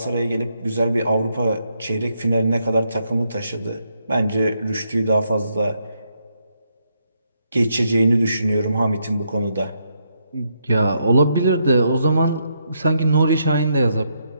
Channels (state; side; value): inverted; both; correlation -0.78